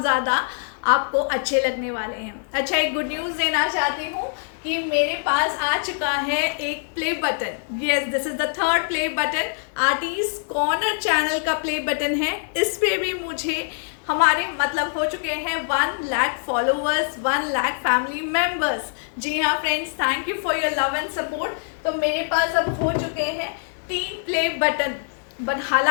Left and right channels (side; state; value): right; silent; digital silence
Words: ज़्यादा आपको अच्छे लगने वाले हैं। अच्छा, एक गुड न्यूज़ देना चाहती हूँ कि मेरे पास आ चुका है एक play button. Yes, this is the third play button. Artist corner channel का प्ले बटन है। इस पे भी मुझे हमारे मतलब हो चुके हैं 1 lakh followers, 1 lakh family members. जी हाँ friends, thank you for your love and support. तो मेरे पास अब हो चुके हैं 3 प्ले बटन। बट